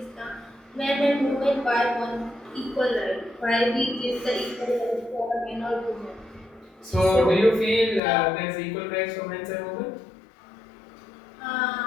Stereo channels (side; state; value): right; drops out; at 8.0 s